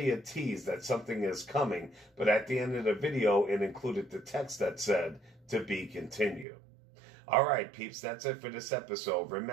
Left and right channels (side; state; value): left; drops out; at 6.5 s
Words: a tease that something is coming, but at the end of the video it included the text that said, "To be continued." Alright peeps, that's it for this episode.